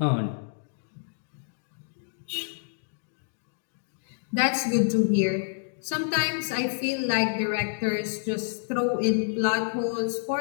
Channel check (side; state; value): right; silent; digital silence